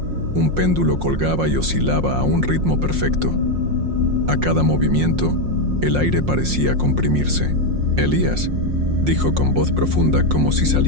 un péndulo colgaba y oscilaba a un ritmo perfecto. A cada movimiento, el aire parecía comprimirse. «Elías», dijo con voz profunda como si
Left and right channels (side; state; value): left; late; 5.6 ms